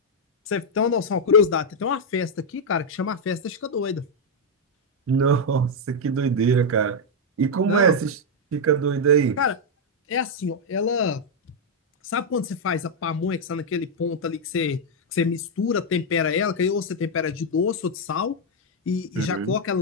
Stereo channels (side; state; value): both; normal; correlation -0.01